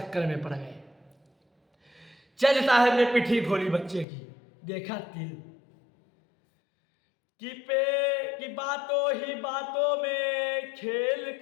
में पड़ गए। जज साहब ने पिठी खोली बच्चे की, देखा तिल कि बातों ही बातों में खेल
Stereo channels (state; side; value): drops out; right; at 4.0 s